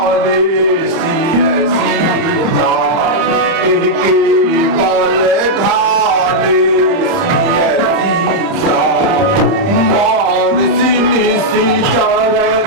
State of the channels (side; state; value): left; late; 30 ms